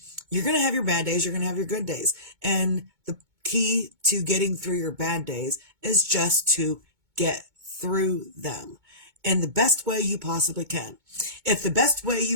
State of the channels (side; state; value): left; late; 2.2 ms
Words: you're going to have your bad days. You're going to have your good days. And the key to getting through your bad days is just to get through them in the best way you possibly can. If the best way